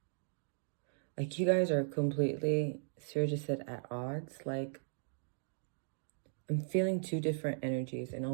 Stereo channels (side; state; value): left; silent; digital silence